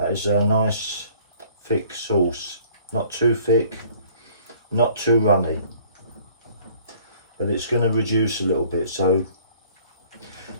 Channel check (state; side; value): inverted; both; correlation -0.55